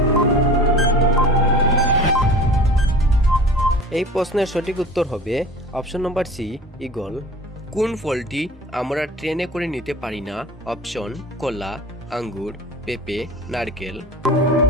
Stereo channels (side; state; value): both; normal; correlation 0.41